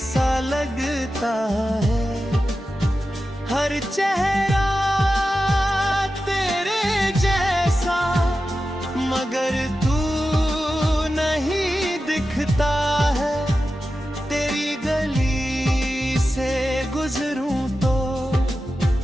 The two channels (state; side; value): normal; both; correlation 0.92